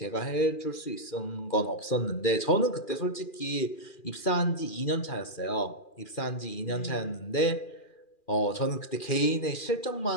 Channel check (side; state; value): right; late; 2.4 ms